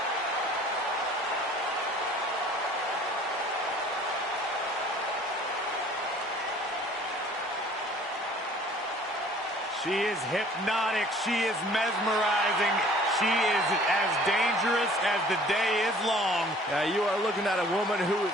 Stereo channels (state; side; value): normal; both; correlation 0.52